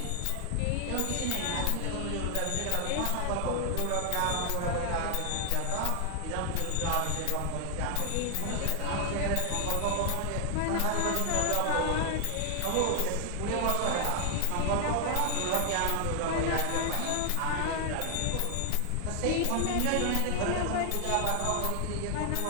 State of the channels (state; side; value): different; both; correlation 0.00